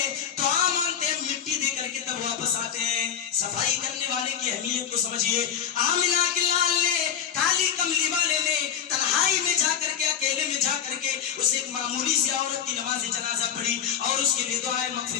دعا مانگتے ہیں, مٹی دے کر کے تب واپس آتے ہیں. صفائی کرنے والے کی اہمیت کو سمجھیے. آمنہ کے لال نے, کالی کملی والے نے تنہائی میں جا کر کے, اکیلے میں جا کر کے اس ایک معمولی سی عورت کی نماز جنازہ پڑھی اور اس کے لیے دعائے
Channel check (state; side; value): quieter; right; 9.0 dB